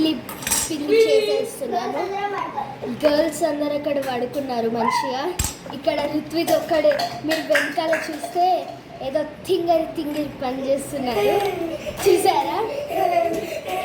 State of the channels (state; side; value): identical; both; correlation 1.00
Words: పిండి చేసేస్తున్నాను. గర్ల్స్ అందరు అక్కడ పడుకున్నారు మంచిగా. ఇక్కడ ఋత్విక్ ఒక్కడే, మీరు వెనకాల చూస్తే ఏదో తింగరి పని చేస్తున్నారు, చూసారా?